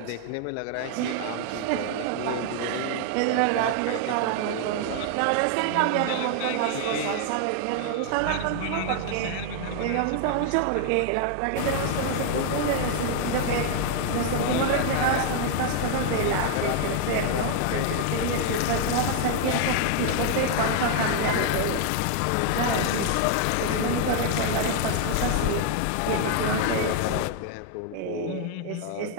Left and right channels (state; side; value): different; both; correlation 0.00